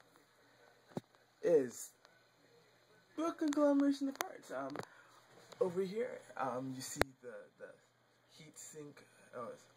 Is a conglomeration of parts. Over here, you see the heat sink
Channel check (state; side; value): identical; both; correlation 1.00